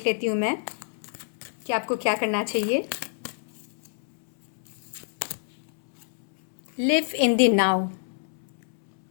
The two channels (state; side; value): silent; right; 60 dB below the other